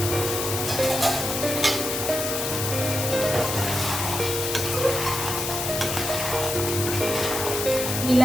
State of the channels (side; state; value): left; noise; hiss, 3 dB below the sound